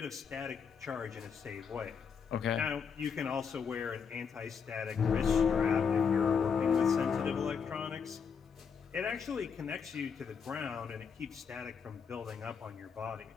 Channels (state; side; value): quieter; right; 6.4 dB